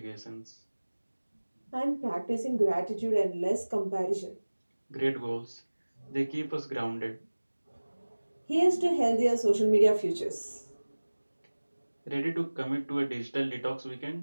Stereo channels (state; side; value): inverted; both; correlation -1.00